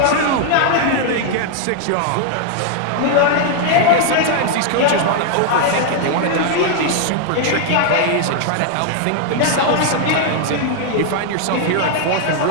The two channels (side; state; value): both; different; correlation 0.00